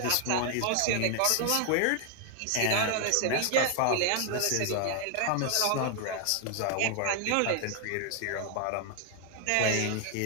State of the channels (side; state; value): both; different; correlation 0.00